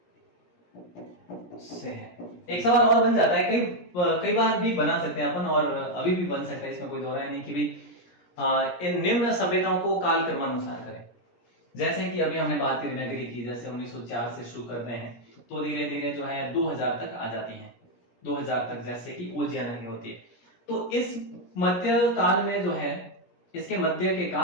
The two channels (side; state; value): right; late; 17 ms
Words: से है एक सवाल और बन जाता है, कई बार भी बना सकते हैं अपन, और अभी भी बन सकता है, इसमें कोई दो राय नहीं कि भी इन निम्न सभ्यताओं को काल क्रमानुसार करें। जैसे कि अभी हमने बात करी नगरी की, जैसे 1904 से शुरू करते हैं तो धीरे धीरे जो है 2000 तक आ जाती हैं, 2000 तक, जैसे कि ओजिया नगरी होती है। तो इस मध्य काल में जो है, इसके मध्य के